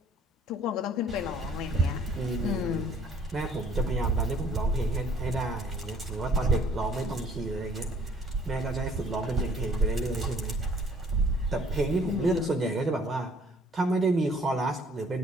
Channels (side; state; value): both; normal; correlation 0.58